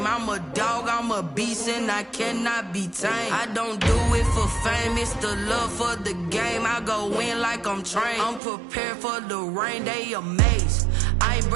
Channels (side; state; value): left; drops out; at 8.4 s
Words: I'm a dog, I'm a beast, and I cannot be tamed. I don't do it for fame, it's the love for the game. I go in like I'm trained. I'm prepared for the rain, they amazed. I ain't